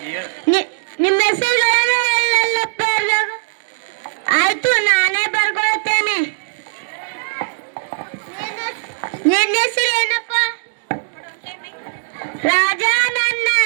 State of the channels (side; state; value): left; silent; digital silence